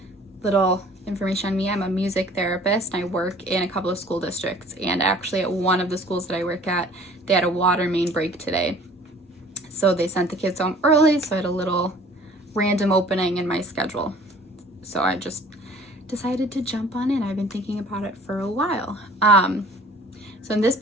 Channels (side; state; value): both; normal; correlation 0.50